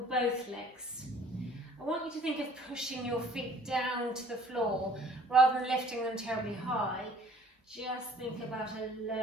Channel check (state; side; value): normal; both; correlation 0.53